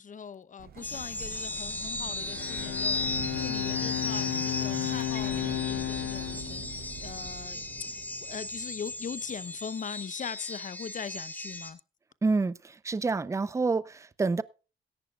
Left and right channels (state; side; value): normal; both; correlation 0.22